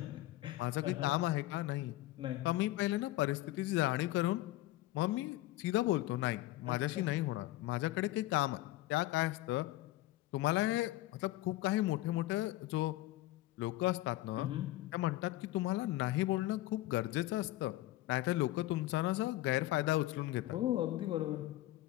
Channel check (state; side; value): quieter; right; 16.8 dB